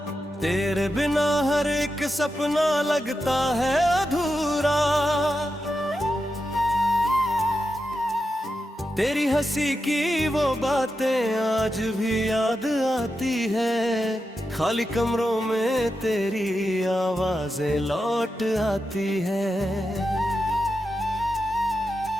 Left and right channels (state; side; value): normal; both; correlation 0.88